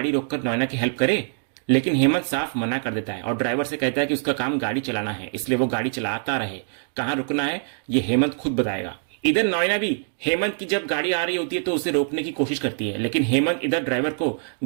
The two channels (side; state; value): left; silent; digital silence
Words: रोककर नॉयना की हेल्प करे, लेकिन हेमंत साफ मना कर देता है और ड्राइवर से कहता है कि उसका काम गाड़ी चलाना है, इसलिए वो गाड़ी चलाता रहे। कहां रुकना है ये हेमंत खुद बताएगा। इधर नॉयना भी हेमंत की जब गाड़ी आ रही होती है तो उसे रोकने की कोशिश करती है, लेकिन हेमंत इधर ड्राइवर को